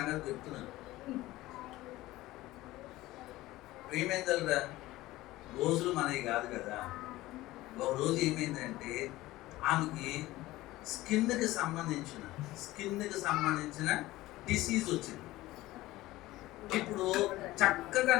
చెప్తున్నాను. ప్రేమేందల్రా రోజులు మనవి కాదు కదా. ఒక రోజు ఏమైందంటే ఆమెకి స్కిన్కి సంబంధించిన డిసీజ్ వచ్చింది. ఇప్పుడు చక్కగా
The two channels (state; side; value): quieter; right; 17.6 dB